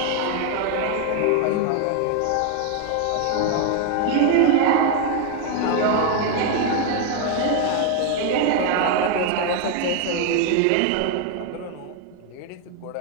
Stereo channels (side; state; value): both; different; correlation 0.01